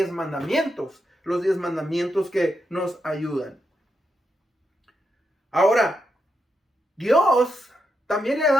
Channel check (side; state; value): both; normal; correlation 0.84